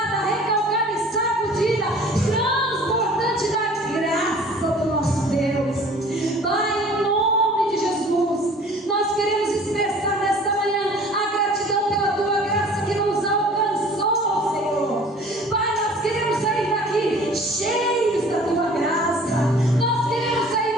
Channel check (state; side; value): normal; both; correlation 0.48